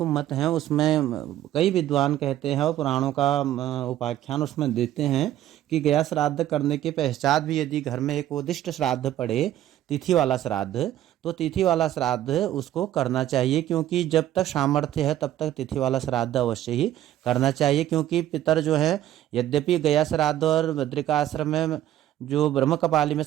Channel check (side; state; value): left; quieter; 12.7 dB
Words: मत हैं। उसमें कई विद्वान कहते हैं और पुराणों का उपाख्यान उसमें देते हैं कि गया श्राद्ध करने के पश्चात भी यदि घर में एकोदिष्ट श्राद्ध पड़े, तिथि वाला श्राद्ध, तो तिथि वाला श्राद्ध उसको करना चाहिए, क्योंकि जब तक सामर्थ्य है तब तक तिथि वाला श्राद्ध अवश्य ही करना चाहिए। क्योंकि पितर जो है, यद्यपि गया श्राद्ध और बद्रिका आश्रम में जो ब्रह्म कपाली में